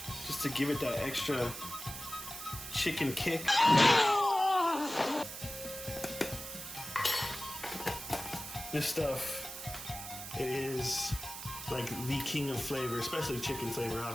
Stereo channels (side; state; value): right; noise; hiss, 9 dB below the sound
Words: just to give it that extra chicken kick. This stuff, it is like the king of flavor, especially chicken flavor.